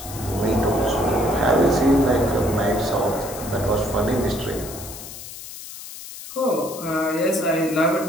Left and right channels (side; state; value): left; noise; hiss, 13 dB below the sound